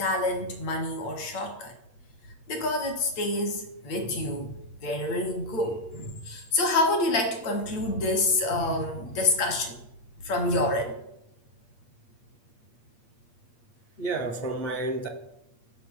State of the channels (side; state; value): right; late; 8.5 ms